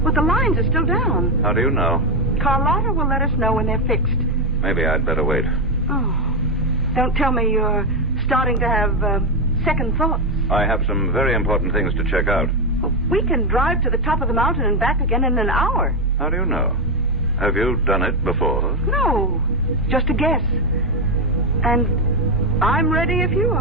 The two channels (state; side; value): normal; both; correlation 0.07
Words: But the lines are still down. How do you know? Carlotta will let us know when they're fixed. Maybe I'd better wait. Oh, don't tell me you're starting to have second thoughts. I have some very important things to check out. Well, we can drive to the top of the mountain and back again in an hour. How do you know? Have you done it before? No, just a guess. And I'm ready if you